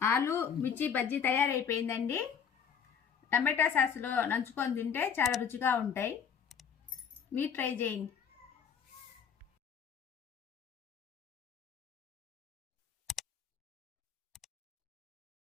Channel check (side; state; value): right; quieter; 7.3 dB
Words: ఆలు మిర్చి బజ్జీ తయారైపోయిందండి. టమాటా సాస్లో నంచుకొని తింటే చాలా రుచిగా ఉంటాయి. మీరు ట్రై చేయండి.